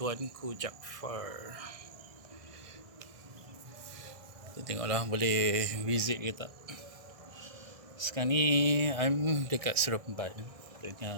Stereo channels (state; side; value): late; left; 1.6 ms